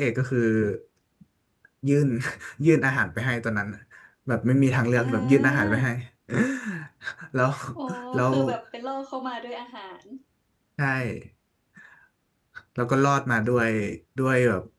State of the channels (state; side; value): identical; both; correlation 1.00